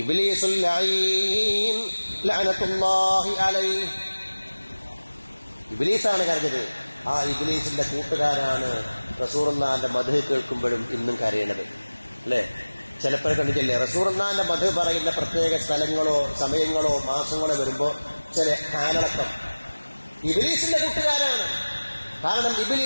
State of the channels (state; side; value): inverted; both; correlation -1.00